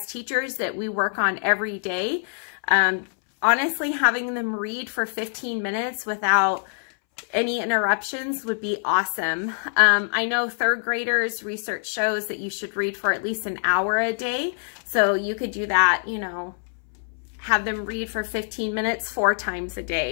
teachers that we work on every day. Honestly, having them read for 15 minutes without any interruptions would be awesome. I know 3rd graders, research shows that you should read for at least an hour a day. So you could do that, you know, have them read for 15 minutes 4 times a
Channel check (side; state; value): right; silent; 62 dB below the other